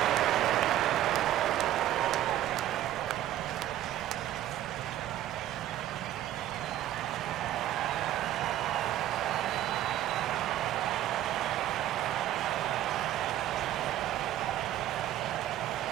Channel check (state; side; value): quieter; left; 12.9 dB